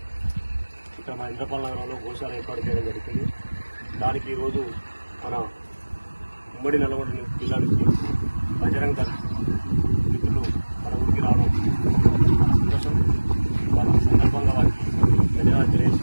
ఇక్కడ మన ఇంద్రపాల నగరంలో గోశాల ఏర్పాటు చేయడం జరిగింది. దానికి ఈరోజు మన ఉమ్మడి నల్గొండ జిల్లా నుంచి బజరంగ్ దళ్ మిత్రులు మన ఊరికి రావడం సంతోషం. వారి సందర్భంగా వారికి ధన్యవాదాలు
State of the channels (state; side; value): inverted; both; correlation -1.00